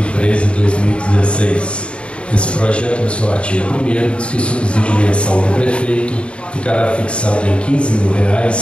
Esse projeto, no seu artigo 1º, diz que o subsídio mensal do prefeito ficará fixado em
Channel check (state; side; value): late; right; 0.058 ms